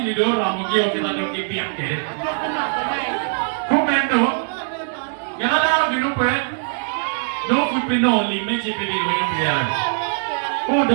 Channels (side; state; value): left; silent; digital silence